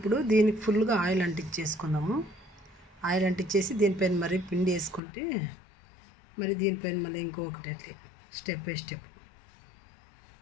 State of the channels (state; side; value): drops out; right; at 5.0 s